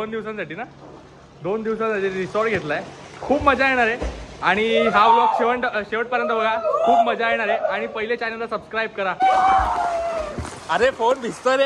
दिवसांसाठी ना, 2 दिवसांसाठी रिसॉर्ट घेतलाय. खूप मजा येणार आहे आणि हा ब्लॉग शेवटपर्यंत बघा. खूप मजा येणार आहे. आणि पहिले चॅनलला सबस्क्राईब करा. अरे फोन भिजतोय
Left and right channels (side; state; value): both; identical; correlation 1.00